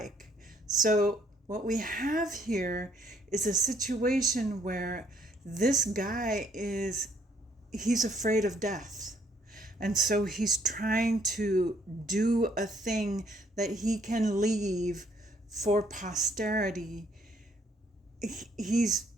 So what we have here is a situation where this guy he's afraid of death. And so he's trying to do a thing that he can leave for posterity. He's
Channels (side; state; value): both; normal; correlation 0.66